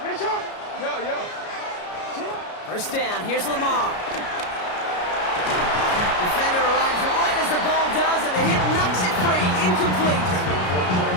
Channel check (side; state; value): right; late; 33 ms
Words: First down, here's Lamar. Defender arrives right as the ball does, and the hit knocks it free. Incomplete.